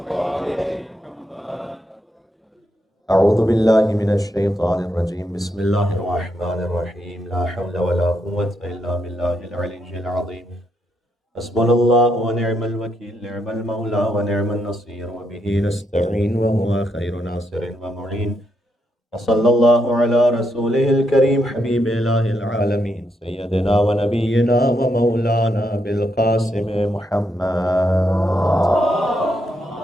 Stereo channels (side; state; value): both; normal; correlation 0.79